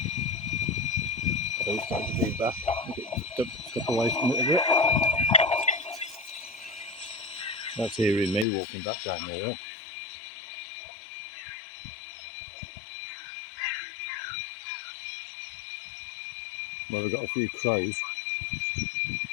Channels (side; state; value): right; drops out; at 8.5 s